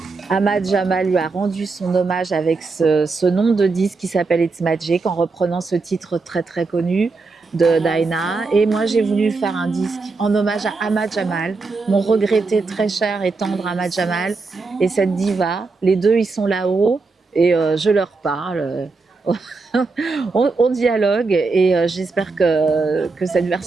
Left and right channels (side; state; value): left; quieter; 4.0 dB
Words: Ahmad Jamal lui a rendu son hommage avec ce nom de disque qui s'appelle It's Magic, en reprenant ce titre très très connu de Dinah. Et moi, j'ai voulu faire un disque en hommage à Ahmad Jamal, mon regretté très cher et tendre Ahmad Jamal, et cette diva. Les deux, ils sont là-haut et je leur parle. On dialogue et j'espère que cette